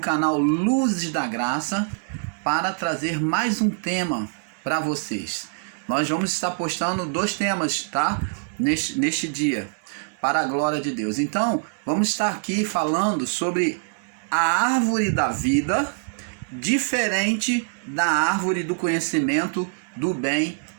Luzes da Graça para trazer mais um tema para vocês. Nós vamos estar postando 2 temas, tá? Neste dia, para a glória de Deus. Então, vamos estar aqui falando sobre a árvore da vida, diferente da árvore do conhecimento do bem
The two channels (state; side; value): silent; left; digital silence